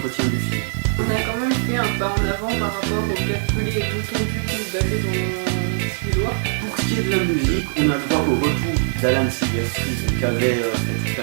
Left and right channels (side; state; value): left; silent; digital silence